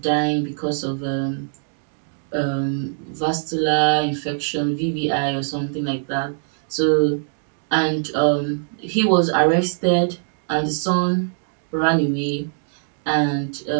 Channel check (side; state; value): left; silent; digital silence